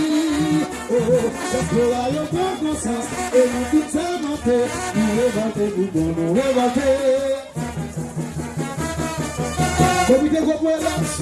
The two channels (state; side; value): identical; both; correlation 1.00